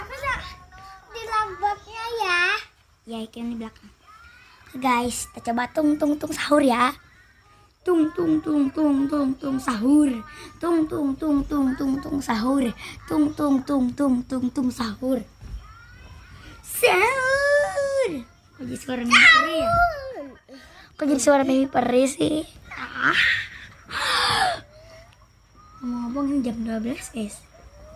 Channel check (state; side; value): identical; both; correlation 1.00